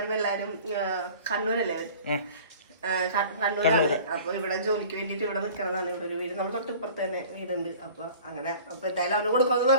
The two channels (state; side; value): inverted; both; correlation -0.45